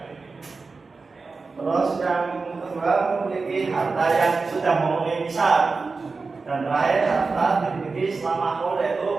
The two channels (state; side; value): quieter; left; 4.2 dB